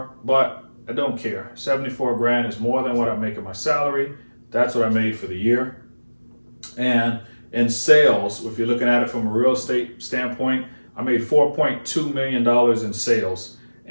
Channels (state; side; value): inverted; both; correlation -1.00